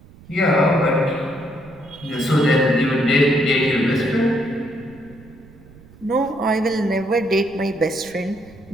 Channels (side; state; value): right; noise; rumble, 23 dB below the sound